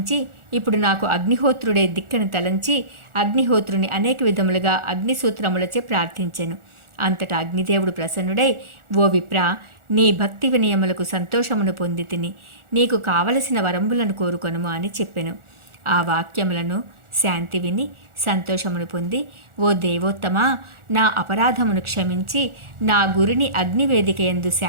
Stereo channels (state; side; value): late; left; 1.4 ms